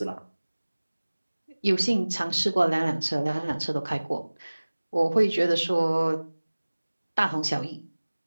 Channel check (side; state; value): both; inverted; correlation -1.00